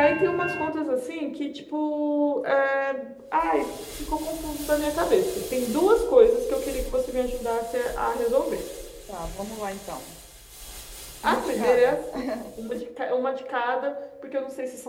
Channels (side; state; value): both; identical; correlation 1.00